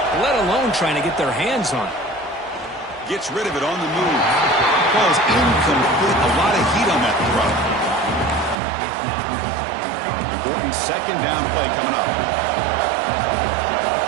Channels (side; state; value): left; drops out; at 8.6 s